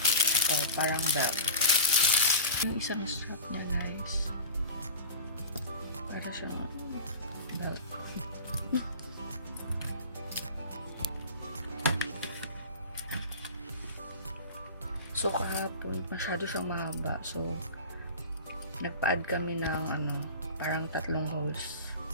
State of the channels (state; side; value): inverted; both; correlation -0.32